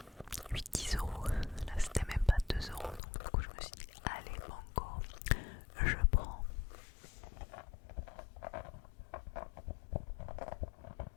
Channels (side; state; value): right; drops out; at 3.0 s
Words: 8-10 euros. Là, c'était même pas 2 euros. Donc, du coup, je me suis dit, allez, banco, je prends.